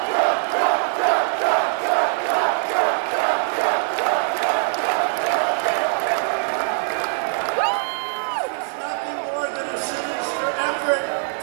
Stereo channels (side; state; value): left; silent; digital silence